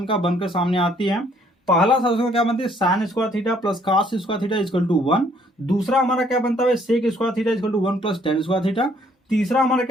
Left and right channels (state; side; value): normal; both; correlation 0.64